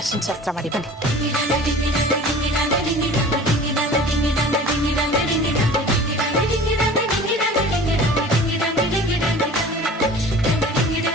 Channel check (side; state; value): both; normal; correlation 0.42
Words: ಅರ್ಶಿನ ಶಾಸ್ತ್ರ ಮಾಡಿ ಬನ್ನಿ.